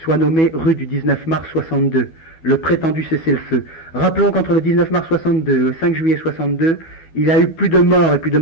soit nommé rue du 19 mars 62, le prétendu cessez-le-feu. Rappelons qu'entre le 19 mars 62 et le 5 juillet 62, il y a eu plus de morts et plus de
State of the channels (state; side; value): late; right; 12 ms